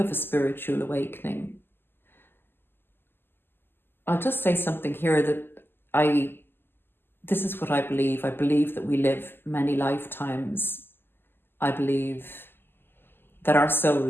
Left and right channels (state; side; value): late; right; 0.10 ms